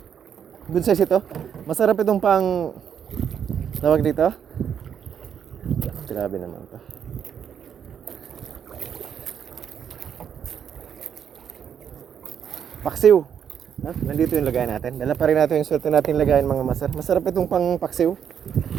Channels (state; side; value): quieter; left; 8.2 dB